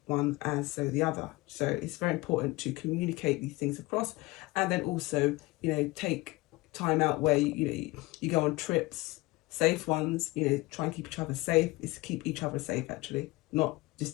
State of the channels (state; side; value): quieter; right; 21.8 dB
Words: one as so the other. So it's very important to communicate these things across, and then also, you know, take time out where you go on trips, safe ones, you know, try and keep each other safe. It's to keep each other safe, actually, not